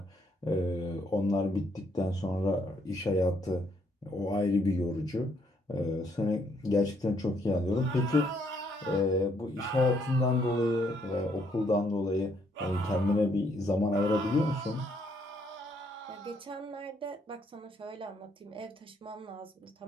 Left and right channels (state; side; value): normal; both; correlation 0.70